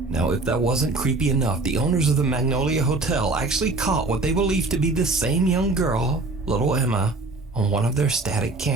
Now, if that wasn't creepy enough, the owners of the Magnolia Hotel actually caught what they believe to be the same young girl, little Emma, on one of their static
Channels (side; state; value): left; quieter; 3.2 dB